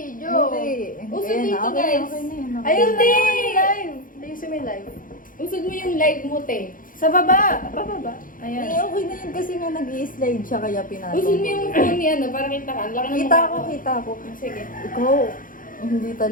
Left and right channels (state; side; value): late; right; 0.40 ms